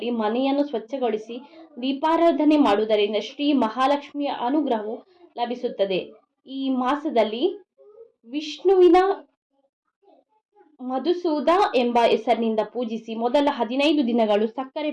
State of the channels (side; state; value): both; identical; correlation 1.00